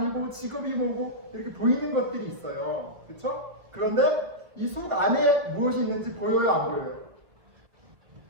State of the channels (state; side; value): late; left; 1.2 ms